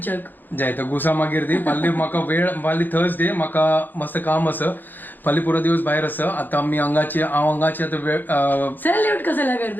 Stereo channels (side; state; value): right; late; 0.089 ms